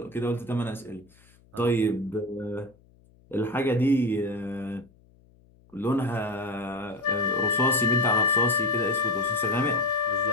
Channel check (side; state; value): left; noise; hum, 29 dB below the sound